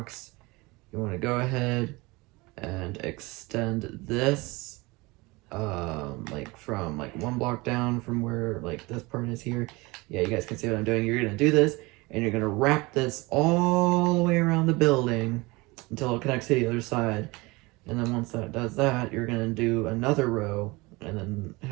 You want to go ahead and extend this like from like 1 block down from where like this part is here. Yeah, you guys can see what I'm doing. You're gonna do this, and you're gonna wrap this all the way around the building until it connects to the other side. And then once that does that, you're gonna do another row and then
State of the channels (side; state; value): left; quieter; 23.6 dB